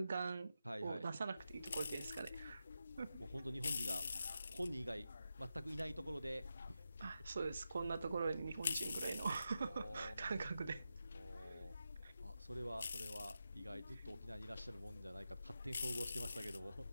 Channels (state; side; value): inverted; both; correlation -0.89